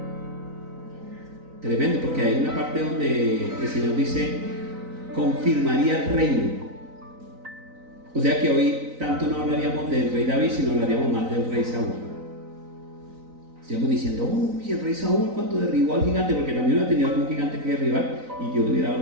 Tremendo, porque hay una parte donde el Señor dice: confirmaría el reino. O sea que hoy tanto no hablaríamos del rey David, sino hablaríamos más del rey Saúl. Estaríamos diciendo: uy, el rey Saúl cuando derribó al gigante, porque también hubiera tenido algún gigante que derribar y Dios le hubiera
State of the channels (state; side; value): late; left; 3.9 ms